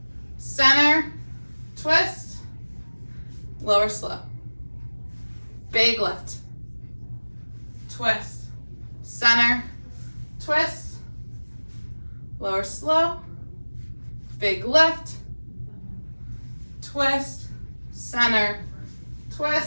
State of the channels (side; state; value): both; inverted; correlation -1.00